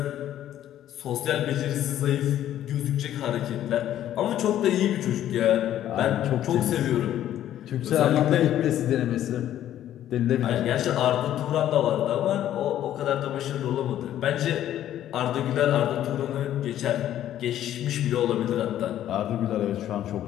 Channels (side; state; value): right; quieter; 11.8 dB